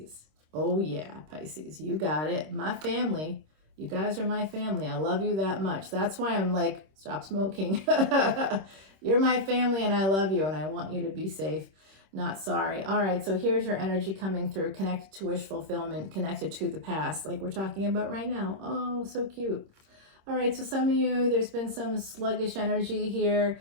Oh yeah, Pisces, you got it. My family, you guys are my family. I love you that much. That's why I'm like, stop smoking. You're my family, and I love you, and I want you to be safe, not sorry. All right, so here's your energy coming through, connected to wish fulfillment, connected to the past, like we're talking about right now. Oh, so cute. All right, so some of you, there's been some sluggish energy here.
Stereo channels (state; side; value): late; left; 26 ms